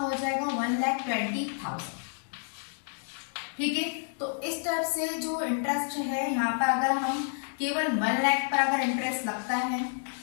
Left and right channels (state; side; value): silent; right; 58 dB below the other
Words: जाएगा? 1,20,000। ठीक है, तो इस टाइप से जो इंटरेस्ट है यहाँ पर अगर हम केवल 1 लाख पर अगर इंटरेस्ट लगता है,